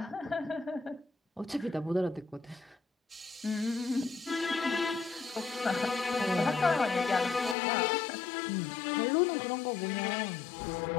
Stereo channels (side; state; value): right; drops out; at 7.6 s